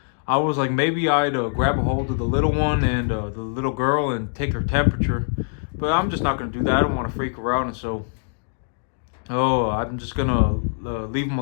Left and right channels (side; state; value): right; silent; digital silence